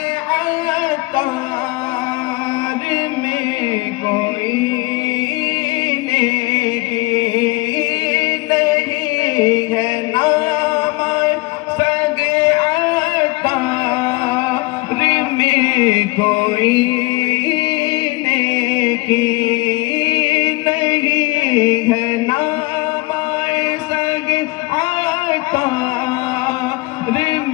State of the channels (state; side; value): quieter; right; 23.2 dB